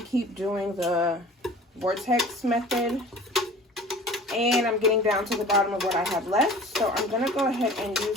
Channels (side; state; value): both; normal; correlation 0.43